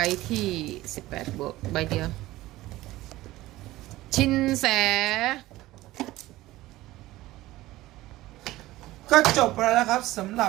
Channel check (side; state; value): left; quieter; 17.2 dB